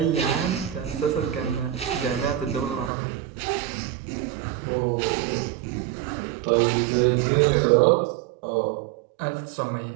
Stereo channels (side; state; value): left; drops out; at 2.9 s